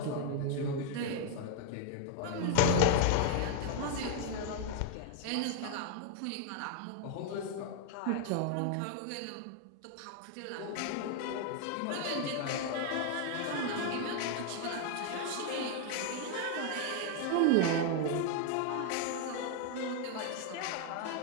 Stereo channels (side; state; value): both; different; correlation 0.00